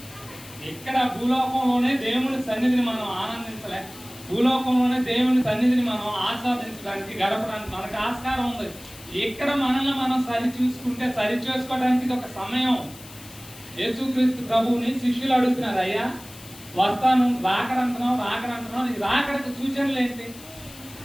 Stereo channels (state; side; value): noise; left; hiss, 18 dB below the sound